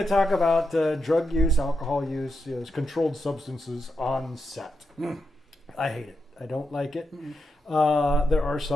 to talk about drug use, alcohol use, controlled substances on set. I hate it. I don't like it. There are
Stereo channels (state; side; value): normal; both; correlation 0.85